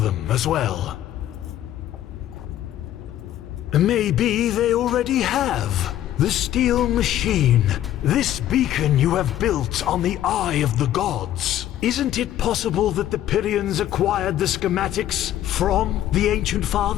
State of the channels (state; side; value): quieter; right; 12.4 dB